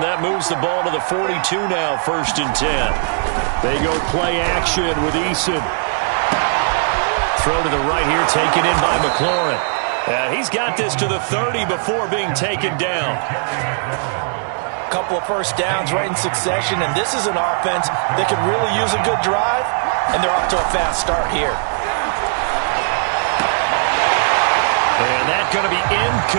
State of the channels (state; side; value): silent; left; 67 dB below the other